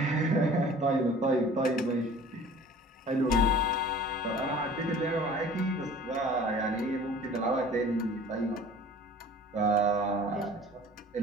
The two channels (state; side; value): normal; both; correlation 0.47